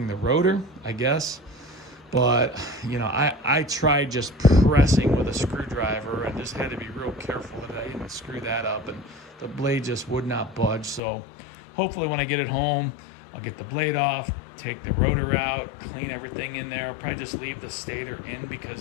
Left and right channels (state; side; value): drops out; right; at 11.0 s